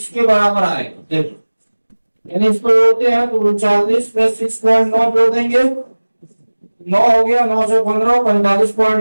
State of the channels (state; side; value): inverted; both; correlation -1.00